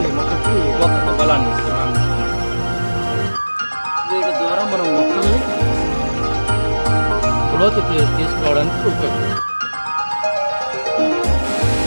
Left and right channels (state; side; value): inverted; both; correlation -1.00